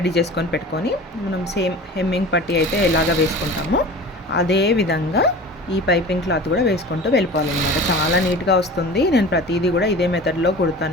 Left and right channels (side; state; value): both; normal; correlation 0.38